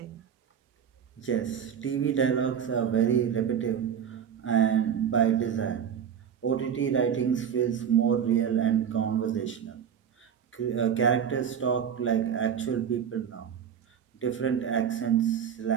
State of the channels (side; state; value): left; quieter; 8.2 dB